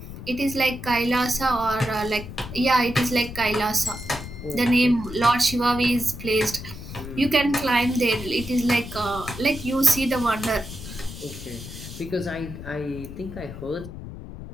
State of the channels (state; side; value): noise; left; rumble, 11 dB below the sound